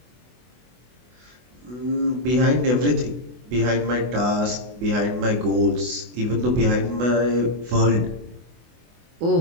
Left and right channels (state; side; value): late; left; 24 ms